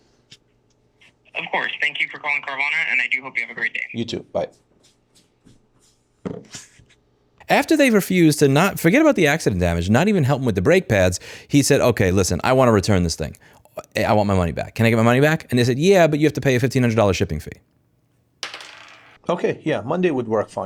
Of course. Thank you for calling Carvana, and I do hope you have a great day. You too. Bye. After they refused to not forget about the accident damage, not even help him with the brake pads, he said, okay, listen, I want to return this thing. I want my money back. Can I get my money back? And they said, yeah, but you have to pay a $1,500 shipping fee. Okay, yeah, Monday would work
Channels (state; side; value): identical; both; correlation 1.00